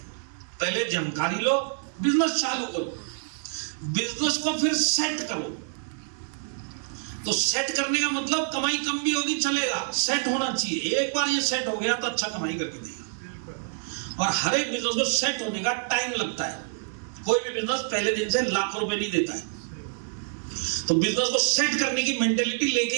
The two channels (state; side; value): silent; left; digital silence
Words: पहले जानकारी लो, बिजनेस चालू करो, बिजनेस को फिर सेट करो। तो सेट करने का मतलब कमाई कम भी होगी चलेगा, सेट होना चाहिए। एक बार ये सेट हो गया तो अच्छा कमाई करके देगा। और हर एक बिजनेस को सेट होने का टाइम लगता है, कोई भी बिजनेस पहले दिन से लाखों रुपए नहीं देता है। तो बिजनेस को सेट करने की मेंटेलिटी लेके